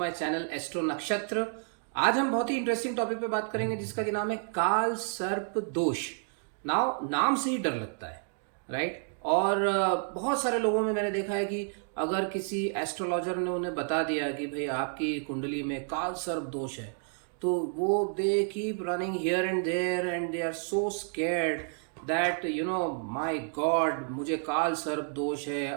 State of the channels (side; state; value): left; silent; 58 dB below the other